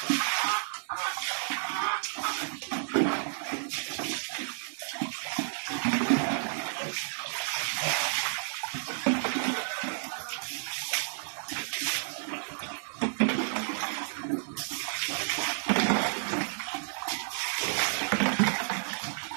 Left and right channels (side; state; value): left; silent; 57 dB below the other